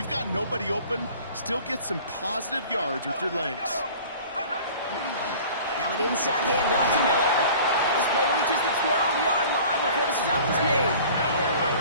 got nobody open, still get some positive yards with your legs. Now an inside handoff to Miller. And this play reaches the 12-yard line before the stop is made.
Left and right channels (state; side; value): inverted; both; correlation -0.45